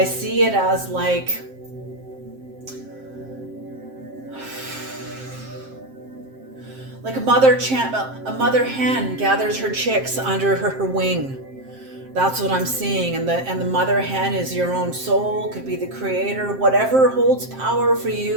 see it as like a mother hen gathers her chicks under her wing. That's what I'm seeing. And the mother hen is your own soul, could be the creator. Whatever holds power for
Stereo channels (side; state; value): left; late; 7.6 ms